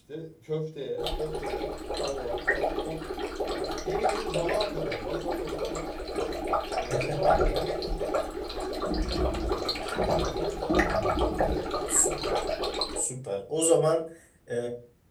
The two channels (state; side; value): identical; both; correlation 1.00